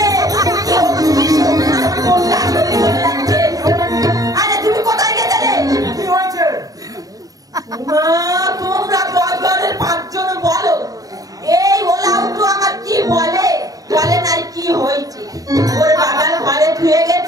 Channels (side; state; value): left; late; 0.18 ms